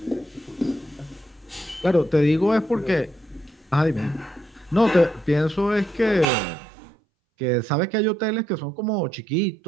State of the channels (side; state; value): left; drops out; at 6.2 s